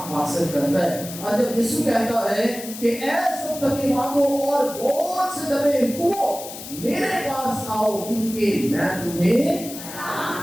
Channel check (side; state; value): left; noise; hiss, 12 dB below the sound